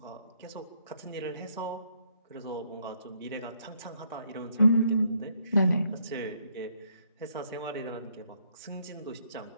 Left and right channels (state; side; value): inverted; both; correlation -0.71